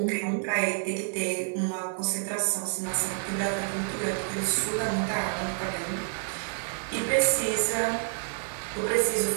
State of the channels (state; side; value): silent; left; 59 dB below the other